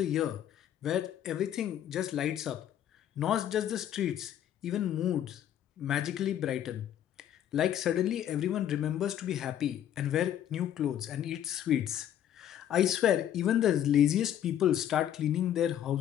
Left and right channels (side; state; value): right; quieter; 10.7 dB